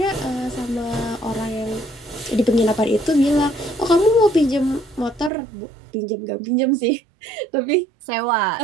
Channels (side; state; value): left; drops out; at 5.3 s